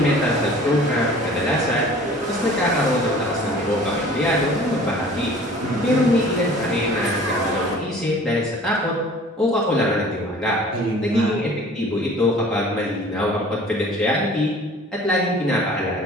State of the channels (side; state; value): both; normal; correlation 0.47